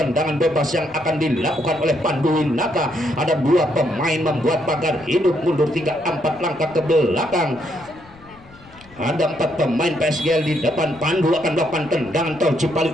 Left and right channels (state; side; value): noise; left; rumble, 24 dB below the sound